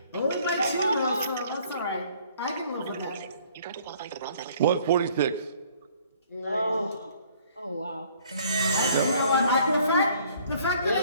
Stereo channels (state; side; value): inverted; both; correlation -0.59